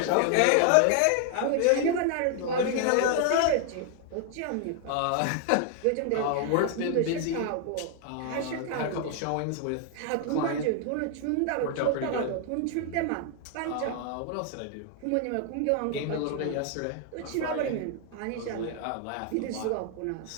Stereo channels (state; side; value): different; both; correlation 0.00